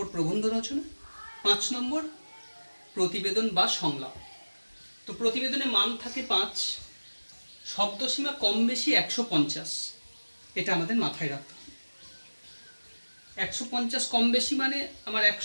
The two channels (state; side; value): inverted; both; correlation -1.00